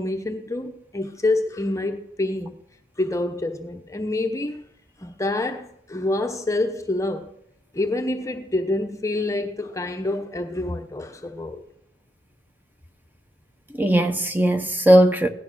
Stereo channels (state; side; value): normal; both; correlation 0.82